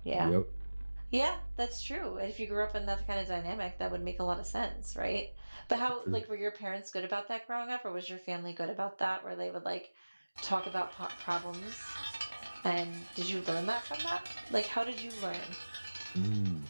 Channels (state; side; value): inverted; both; correlation -1.00